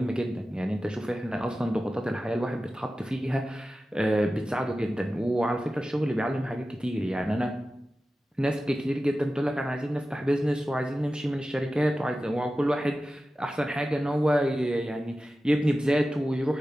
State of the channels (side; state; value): both; normal; correlation 0.94